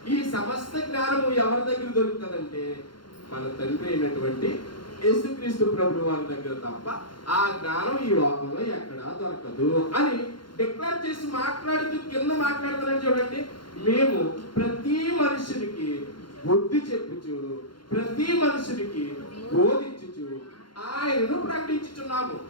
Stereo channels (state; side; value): late; right; 0.72 ms